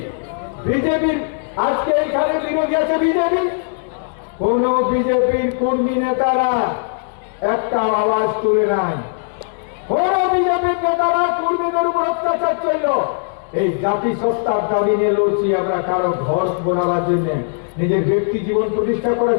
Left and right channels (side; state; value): right; silent; digital silence